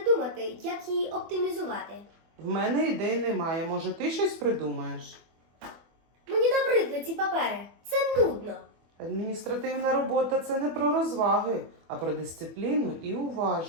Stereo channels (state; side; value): late; left; 24 ms